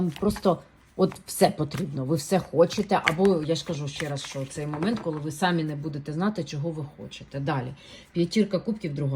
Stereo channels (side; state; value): both; identical; correlation 1.00